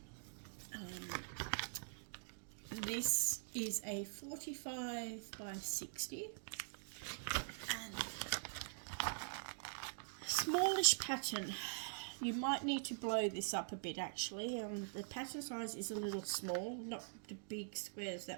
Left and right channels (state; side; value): silent; left; digital silence